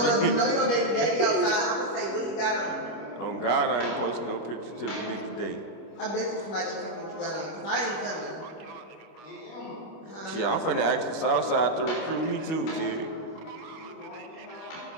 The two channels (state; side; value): late; right; 25 ms